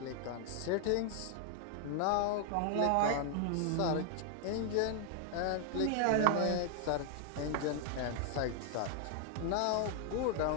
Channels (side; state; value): both; different; correlation 0.00